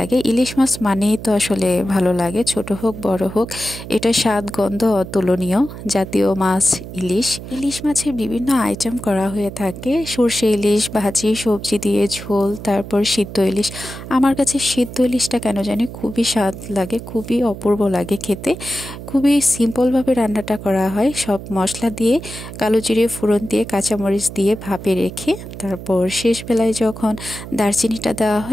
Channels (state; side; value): noise; right; hum, 11 dB below the sound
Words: ইলিশ মাছ মানেই তো আসলে ভালো লাগে, ছোট হোক বড় হোক, এটা স্বাদ গন্ধ অতুলনীয় জাতীয় মাছ ইলিশ। ইলিশ মাছের বিভিন্ন আইটেম করা হয়ে থাকে, সর্ষে ইলিশ, ভাজি, সবজি দিয়ে ঝোল, তারপর সিদ্ধ ইলিশ। আমার কাছে সিদ্ধ ইলিশটা কেন জানি খুবই স্বাদ লাগে, খুবই অপূর্ব লাগে খেতে। খুবই সিম্পলভাবে রান্নাটা করা হয়, সব মশলা দিয়ে, কালো জিরে ফোড়ন দিয়ে, কাঁচামরিচ দিয়ে ভাপে রেখে তারপর শেষ বেলায় যখন দারচিনিটা দেওয়া